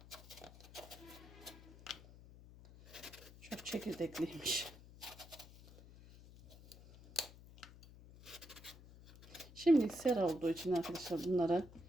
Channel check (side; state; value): left; noise; hum, 19 dB below the sound